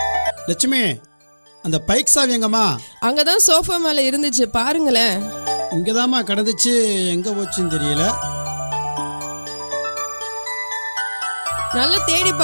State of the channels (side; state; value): both; inverted; correlation -1.00